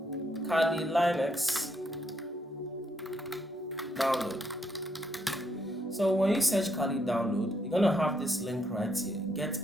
Kali Linux download. So when you search Kali download, you're gonna have this link right here, Get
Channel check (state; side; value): normal; both; correlation 0.75